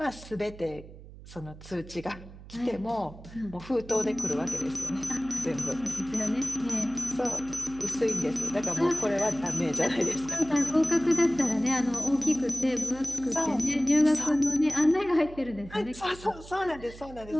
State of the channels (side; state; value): right; noise; hum, 17 dB below the sound